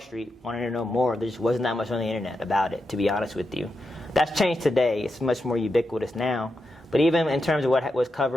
wanted to know more, there just wasn't that much on the internet about it, to be honest with you. That's changed today. It's much more ubiquitous now. But even in terms of what was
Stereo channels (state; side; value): normal; both; correlation 0.87